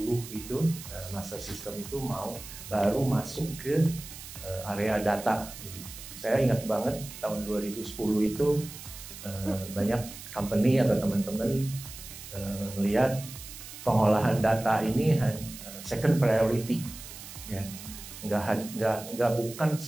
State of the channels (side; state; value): right; noise; hiss, 13 dB below the sound